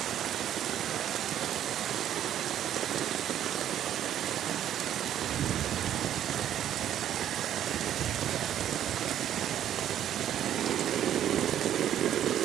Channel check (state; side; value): quieter; left; 10.8 dB